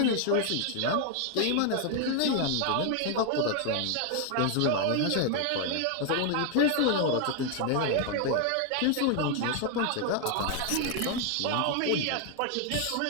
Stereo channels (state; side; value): different; both; correlation 0.00